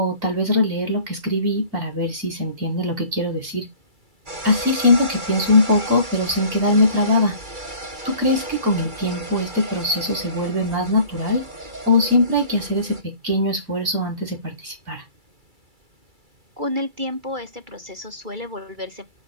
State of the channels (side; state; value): left; late; 2.2 ms